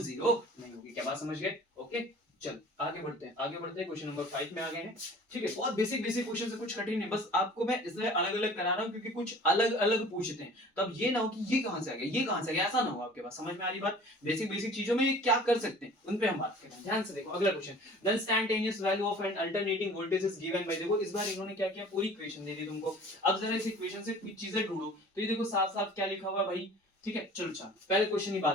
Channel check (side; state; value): both; normal; correlation 0.46